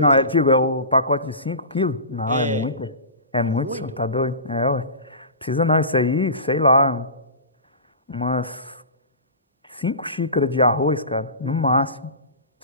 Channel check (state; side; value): inverted; both; correlation -0.32